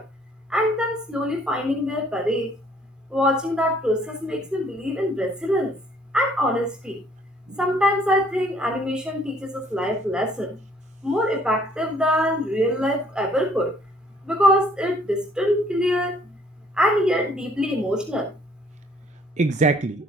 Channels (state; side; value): normal; both; correlation 0.61